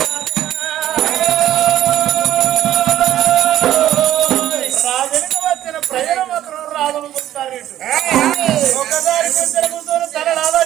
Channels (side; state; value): left; quieter; 12.5 dB